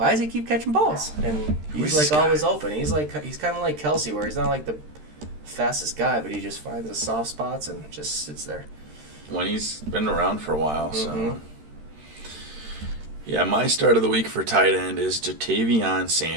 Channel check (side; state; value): left; late; 13 ms